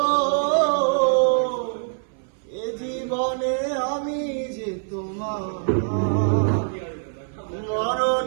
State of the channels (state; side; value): silent; left; 60 dB below the other